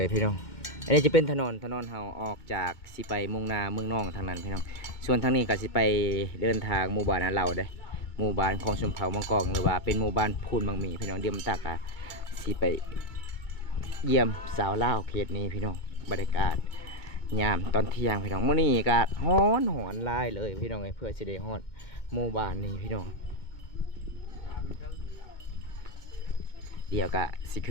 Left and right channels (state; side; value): late; right; 2.1 ms